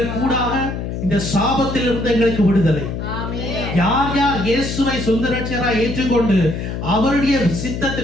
கூடாக இந்த சாபத்திலிருந்து எங்களுக்கு விடுதலை. யார் யார் இயேசுவை சொந்த இரட்சகராய் ஏற்றுக்கொண்டு அவருடைய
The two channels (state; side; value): noise; left; hum, 5 dB below the sound